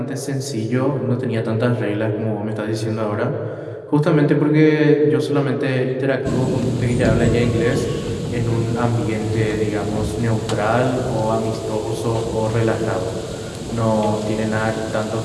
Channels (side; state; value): both; identical; correlation 1.00